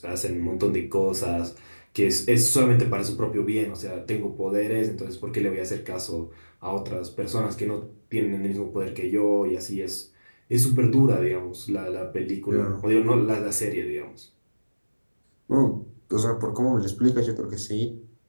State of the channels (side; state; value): both; inverted; correlation -1.00